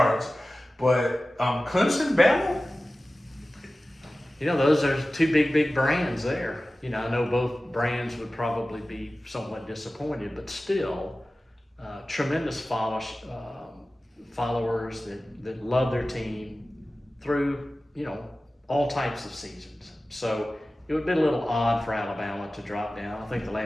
But Clemson, Bama? Those are 2 big brands there. I know both brands would probably be somewhat disappointed, but still, tremendous followers that love their team through, all types of seasons. So it would be a little odd for Alabama to drop down. I think the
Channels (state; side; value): normal; both; correlation 0.96